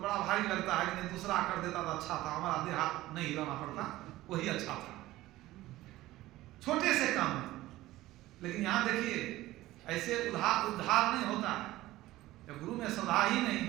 बड़ा भारी लगता है कि नहीं दूसरा कर देता तो अच्छा था, हमारा देह हाथ नहीं हिलाना पड़ता, वही अच्छा था, छोटे से काम में। लेकिन यहाँ देखिए ऐसे उद्धार नहीं होता है जब गुरु में श्रद्धा ही नहीं,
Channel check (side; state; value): left; quieter; 16.7 dB